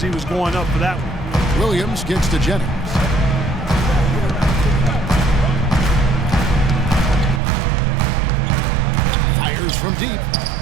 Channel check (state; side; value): drops out; left; at 7.4 s